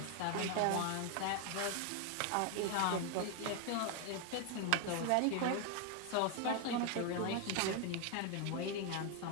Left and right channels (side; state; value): both; different; correlation 0.01